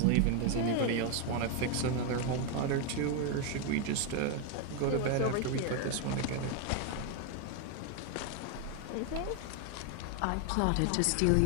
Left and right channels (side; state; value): both; different; correlation 0.01